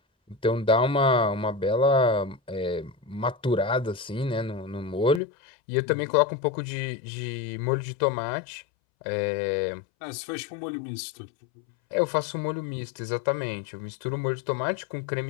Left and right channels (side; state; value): right; drops out; at 5.2 s